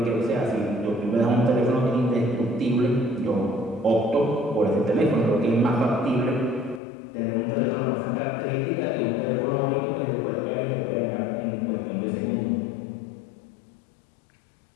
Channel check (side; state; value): right; drops out; at 6.8 s